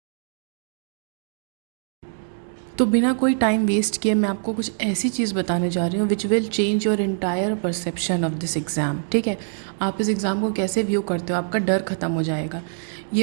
तो बिना कोई टाइम वेस्ट किए मैं आपको कुछ ऐसी चीज़ बताने जा रही हूँ which will change your entire perception of this exam. ठीक है, आप इस एग्ज़ाम को कैसे व्यू करते हो, आपका डर ख़त्म हो जाएगा।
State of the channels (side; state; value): left; silent; digital silence